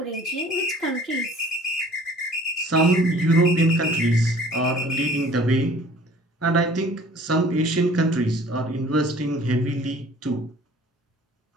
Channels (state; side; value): normal; both; correlation 0.51